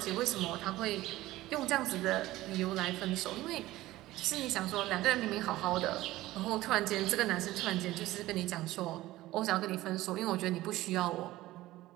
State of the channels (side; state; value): left; quieter; 16.8 dB